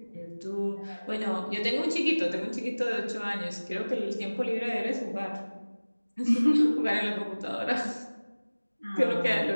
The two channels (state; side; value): inverted; both; correlation -1.00